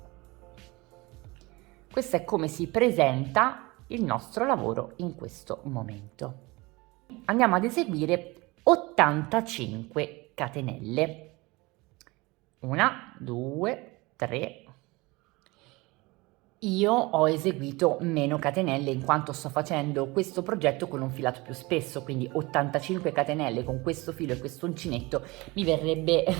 Questo è come si presenta il nostro lavoro in questo momento. Andiamo ad eseguire 85 catenelle. 1, 2, 3, Io ho eseguito meno catenelle in quanto sto facendo questo progetto con un filato più spesso, quindi 85 catenelle con questo filo e questo uncinetto mi verrebbe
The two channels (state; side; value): quieter; left; 23.4 dB